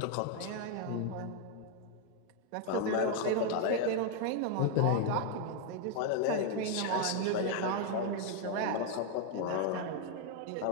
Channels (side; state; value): both; different; correlation 0.00